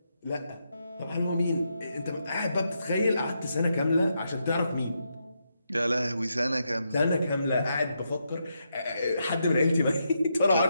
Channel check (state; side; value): inverted; both; correlation -0.82